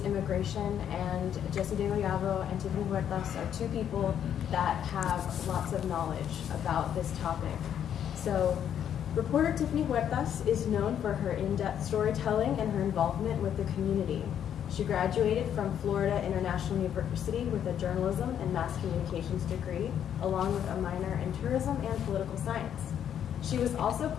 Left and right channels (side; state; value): right; quieter; 9.4 dB